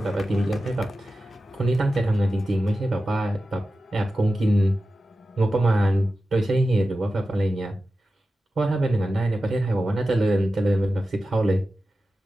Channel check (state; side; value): normal; both; correlation 0.93